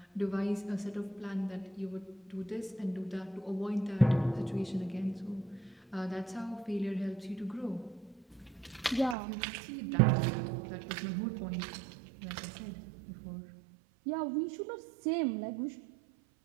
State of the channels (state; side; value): drops out; left; at 9.2 s